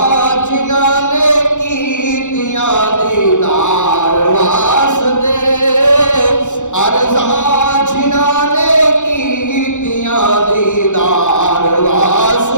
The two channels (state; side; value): late; right; 0.85 ms